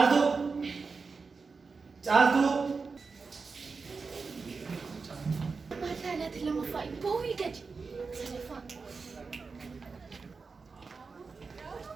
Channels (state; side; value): quieter; left; 4.6 dB